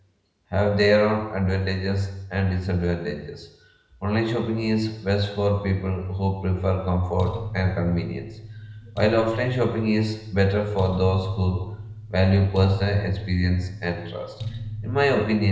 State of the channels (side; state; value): both; identical; correlation 1.00